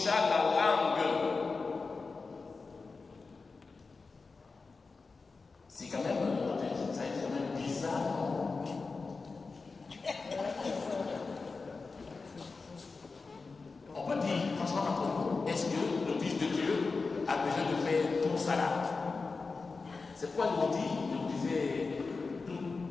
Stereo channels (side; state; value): right; quieter; 4.2 dB